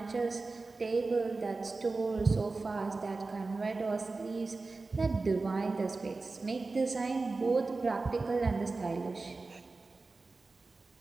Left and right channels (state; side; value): quieter; left; 3.7 dB